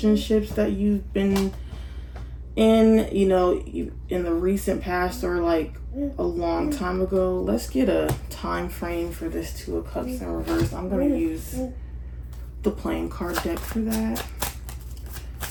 that you've been in, you know, in the recent past or like a long time ago. Let's get a time frame for this Two of Cups in reverse. I'm going to use the playing card deck for that.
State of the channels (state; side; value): identical; both; correlation 1.00